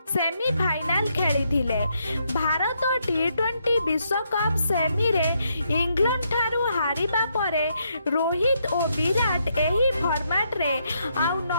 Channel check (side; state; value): both; inverted; correlation -0.77